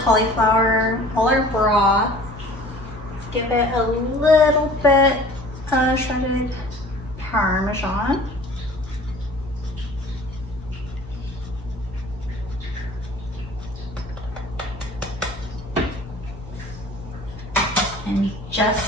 cauliflower, all our broth. Give it a little bit of shredded Parmesan. And just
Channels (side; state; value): both; normal; correlation 0.46